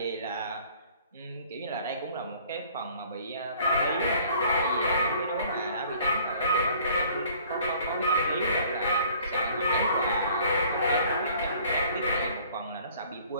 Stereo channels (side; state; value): both; inverted; correlation -0.55